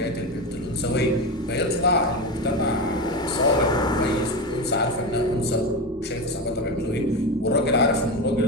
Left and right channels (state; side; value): normal; both; correlation 0.19